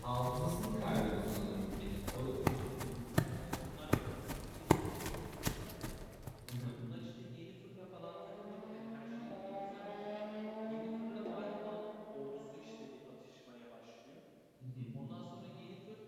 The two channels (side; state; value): both; identical; correlation 1.00